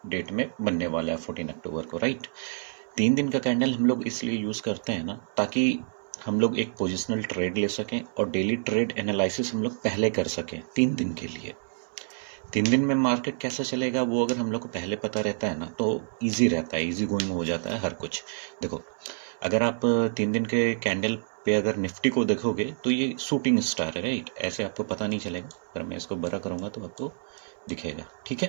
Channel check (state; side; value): silent; left; 59 dB below the other